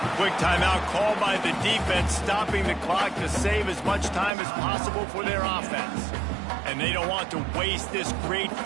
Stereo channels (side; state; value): left; drops out; at 4.3 s